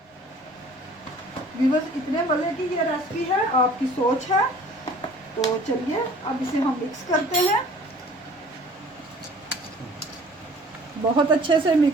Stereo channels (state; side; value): normal; both; correlation 0.50